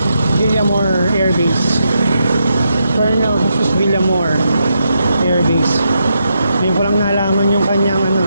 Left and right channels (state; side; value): inverted; both; correlation -0.82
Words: Villamor Air Base. Colonel Jesus Villamor Air Base. Ngayon ko lang nalaman yung kanyang